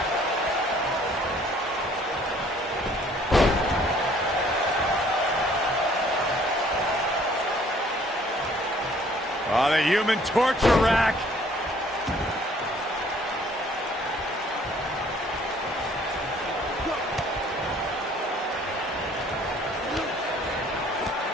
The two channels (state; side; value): normal; both; correlation 0.58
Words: Oh, the human torture rack.